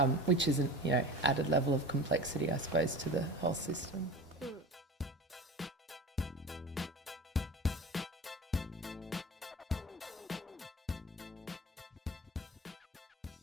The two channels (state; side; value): normal; both; correlation 0.35